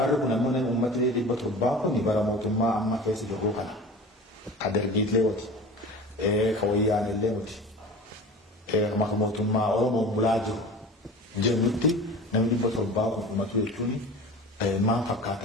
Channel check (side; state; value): both; normal; correlation 0.37